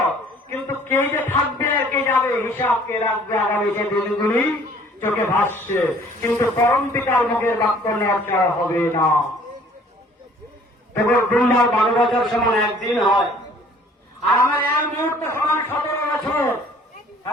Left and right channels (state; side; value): normal; both; correlation 0.55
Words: কিন্তু কে যে থাকবে আর কে যাবে হিসাব কে রাখবে আগামী সে দিনগুলি চোখে ভাসছে। কিন্তু পরম পিতার মুখের বাক্য নড়চড় হবে না। তবে দুর্বার 12 বছর সমান একদিন হয়, আর আমার এক মুহূর্ত সমান 17 বছর।